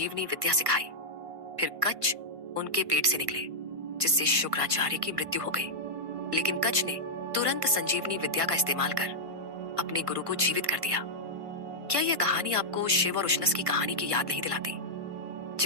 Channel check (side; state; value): left; late; 1.5 ms